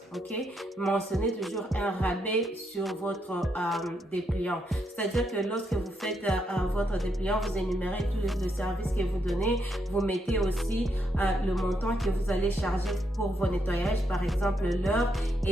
ok? Mentionnez toujours un rabais sur votre dépliant. C'est-à-dire que lorsque vous faites votre dépliant, vous énumérez tous les services que vous donnez. Vous mettez aussi le montant que vous allez charger pour vos nettoyages, par exemple l'heure.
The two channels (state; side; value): normal; both; correlation 0.78